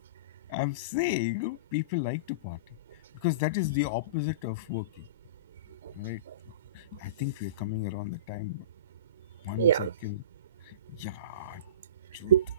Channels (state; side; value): inverted; both; correlation -0.31